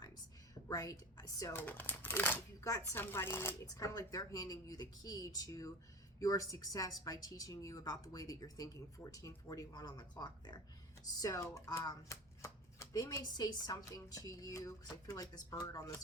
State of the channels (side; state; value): both; normal; correlation 0.30